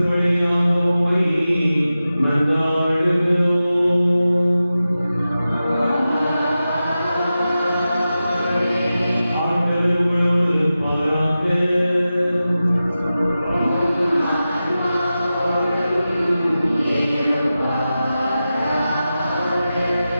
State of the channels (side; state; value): both; inverted; correlation -0.93